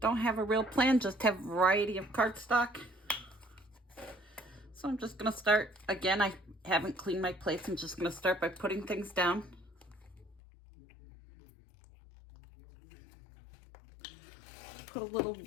have a real plan, just have a variety of cardstock. So I'm just going to start, again, I haven't cleaned my plates. I'm just going to start by putting things down. Put a little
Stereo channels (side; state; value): right; drops out; at 10.4 s